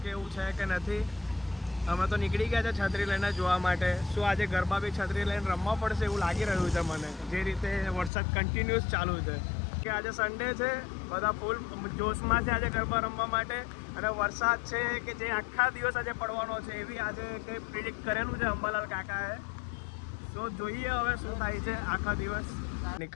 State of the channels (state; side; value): drops out; right; at 8.1 s